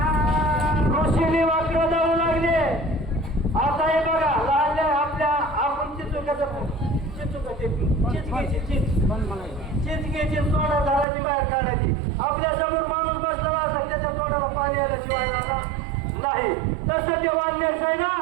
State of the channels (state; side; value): drops out; left; at 11.1 s